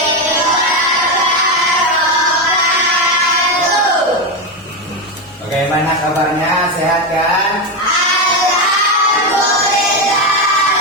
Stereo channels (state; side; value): normal; both; correlation 0.11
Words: wabarakatuh. Bagaimana kabarnya? Sehat kan?